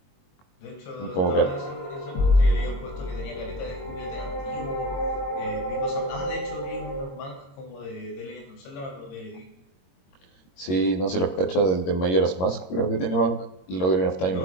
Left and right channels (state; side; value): late; right; 22 ms